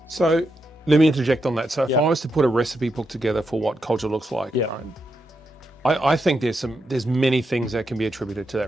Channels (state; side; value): normal; both; correlation 0.84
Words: So let me interject on that. So if I was to put a recipe book together for what culture looks like, right? I think there's many things that can be attributed to